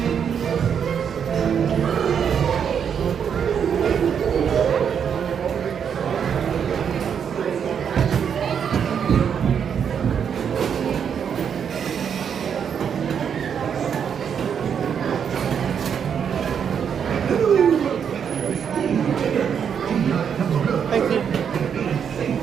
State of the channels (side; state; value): left; quieter; 7.6 dB